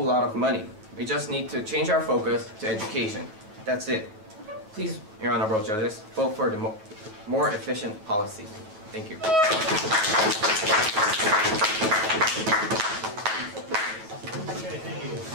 lot of money. We just need to change our focus to education. That's it. Please, Your Honorable Judges, vote for the more efficient policy. Thank you. Okay, thank you.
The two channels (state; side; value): late; left; 9.4 ms